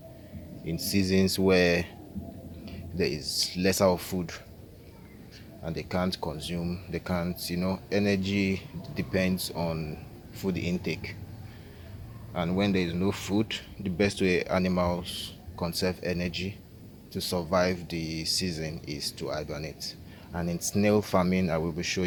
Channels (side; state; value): both; identical; correlation 1.00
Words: in seasons where there is lesser of food and they can't, energy depends on food intake. And when there is no food, the best way animals conserve energy to survive the season is to hibernate. And in snail farming, I will be